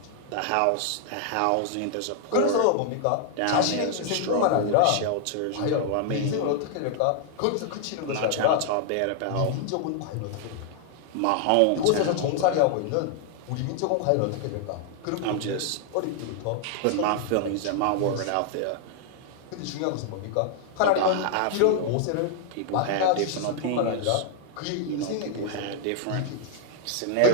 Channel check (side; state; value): both; different; correlation 0.00